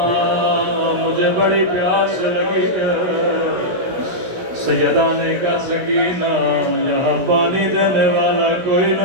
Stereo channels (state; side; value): late; left; 17 ms